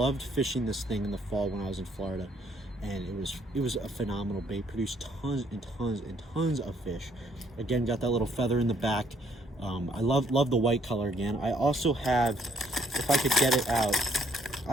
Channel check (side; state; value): both; normal; correlation 0.68